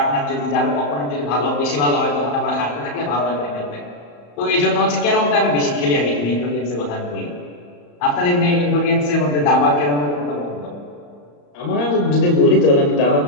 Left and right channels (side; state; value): right; late; 34 ms